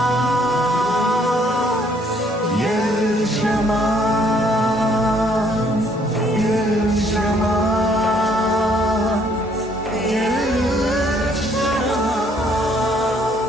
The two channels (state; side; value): normal; both; correlation 0.65